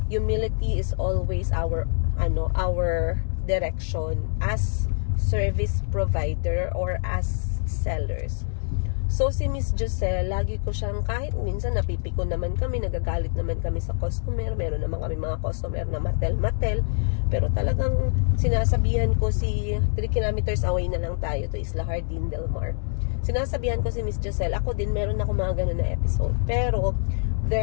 humility is always our direction as service provider or as sellers. So, si Miss Giselle, lagi ko siyang, kahit minsan napipiko naman kami, nagagalit naman kami sa customer, meron naman kami mga customer na matel-matel, pero talagang sinasabihan ko si 3 kilometers away na lang tayo to Isla Hardin Del Mar. Sinasabihan ko si Miss Giselle, ako din meron ako mga ganun na episode, pero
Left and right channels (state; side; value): silent; right; digital silence